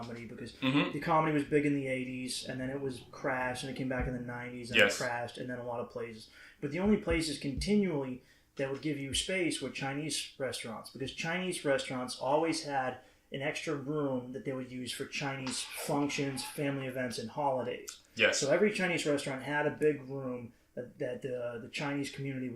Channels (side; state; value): both; identical; correlation 1.00